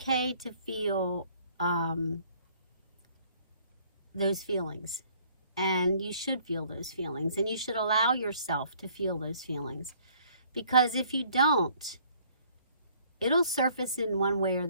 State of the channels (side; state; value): both; inverted; correlation -0.60